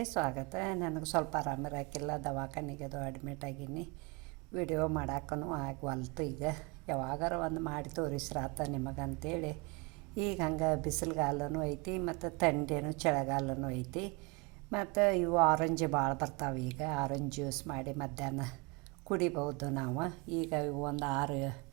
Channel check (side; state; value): left; quieter; 28.6 dB